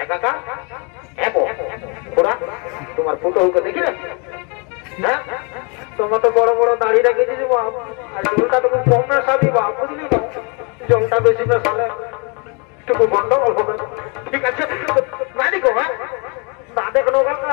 একাকা এমো ওরা তোমার ফুটোকে দেখি না হ্যাঁ তোমার তো বড় বড় দাঁড়িয়ে রেখেছি বাপ আর জলটা তুমি কম না সাবি বাপ বুঝলি না জলটা বেশি না সালে একটু গন্ডগোল হবে ঠিক আছে না দেখো হ্যাঁ না দেখো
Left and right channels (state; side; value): quieter; right; 33.8 dB